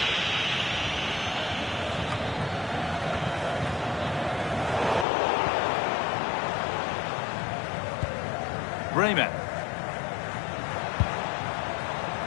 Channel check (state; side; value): drops out; right; at 5.1 s